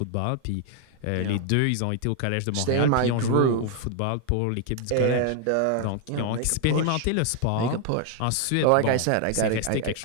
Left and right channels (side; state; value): both; different; correlation 0.00